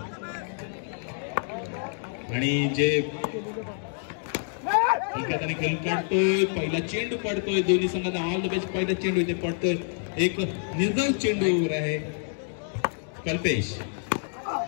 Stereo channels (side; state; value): right; silent; digital silence